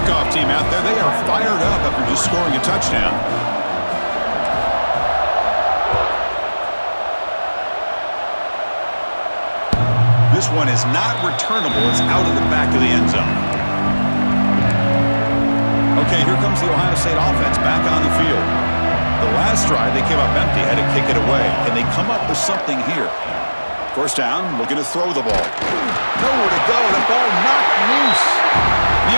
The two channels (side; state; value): both; inverted; correlation -1.00